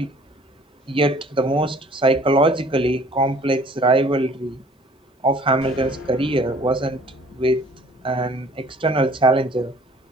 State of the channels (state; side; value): normal; both; correlation 0.53